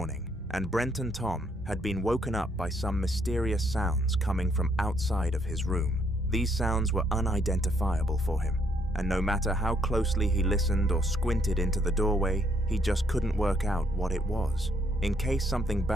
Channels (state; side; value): normal; both; correlation 0.70